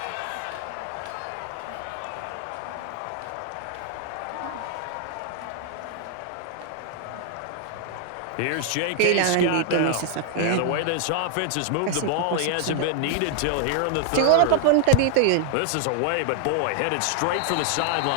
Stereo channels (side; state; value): both; different; correlation 0.00